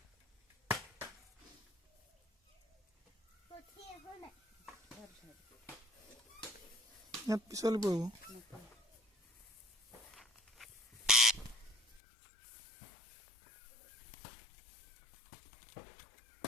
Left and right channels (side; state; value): right; drops out; at 12.0 s